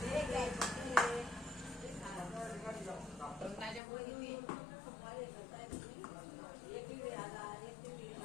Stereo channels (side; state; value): right; drops out; at 3.8 s